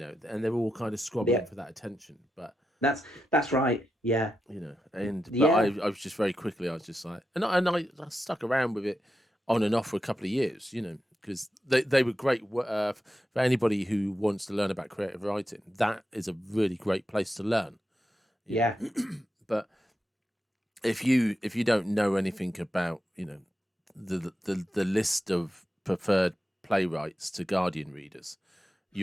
they're all kind of squabbling for that attention. But that's right. Yeah. But I was just very quickly, I was just like, and I stuck around with it on and off for a couple of years, because they were great for anybody who wants to learn about creative writing. That is a really great place to learn. Yeah. But if you don't know anything about, the list of preferred playwrights to Guardian readers,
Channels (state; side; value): normal; both; correlation 0.88